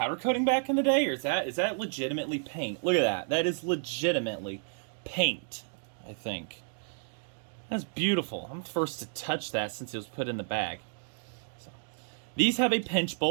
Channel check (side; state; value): left; silent; digital silence